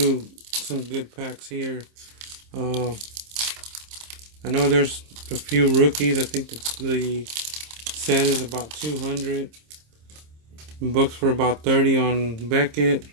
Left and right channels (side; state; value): left; late; 26 ms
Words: some good packs here. I know there's a few rookies. I think the set is about 200. Books for about 30 on Beckett.